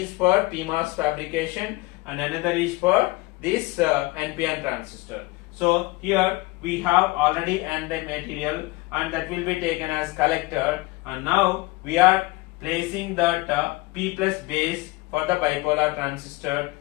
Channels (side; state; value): right; quieter; 22.2 dB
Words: for CMOS fabrication and another is for this NPN transistor. So here we have already N-type material and that will be taken as collector, and now we are placing that P plus base for the bipolar transistor.